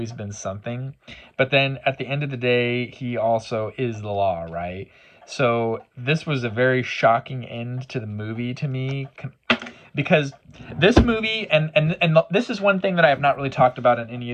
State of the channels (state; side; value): identical; both; correlation 1.00